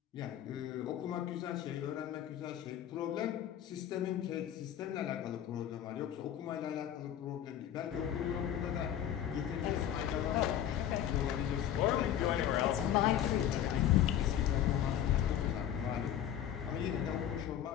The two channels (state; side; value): quieter; right; 10.6 dB